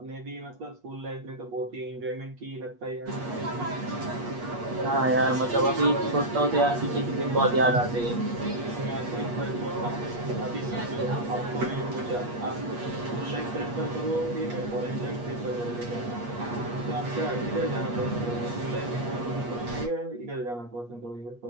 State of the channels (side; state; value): left; late; 8.4 ms